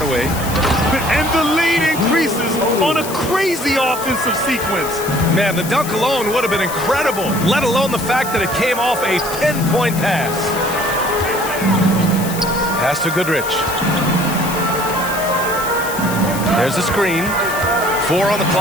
And the lead increases on a crazy offensive sequence. Man, the dunk alone would have been incredible, let alone the fact that it came off a 10-point pass. Pass to Goodrich. There's a screen. 4 on the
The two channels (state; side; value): noise; left; hiss, 10 dB below the sound